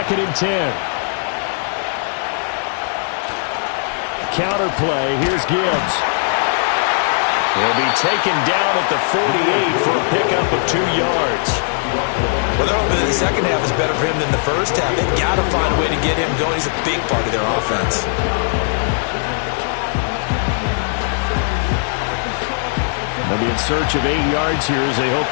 and 10. Counter play, here's Gibbs. He'll be taken down at the 48 for a pickup of 2 yards. Well, they're hoping that the second half is better for him than the first half. They've got to find a way to get him going. He's a big part of their offense. They'll be in search of 8 yards here as they hope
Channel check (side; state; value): right; silent; 62 dB below the other